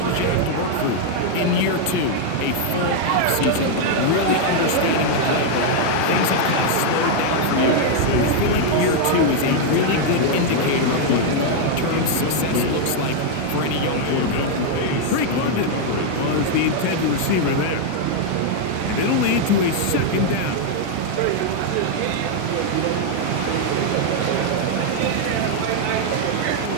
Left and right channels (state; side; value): different; both; correlation 0.00